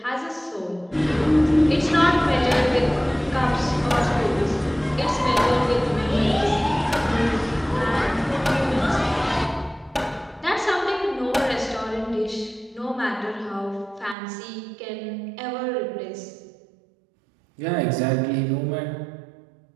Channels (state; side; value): drops out; left; at 14.2 s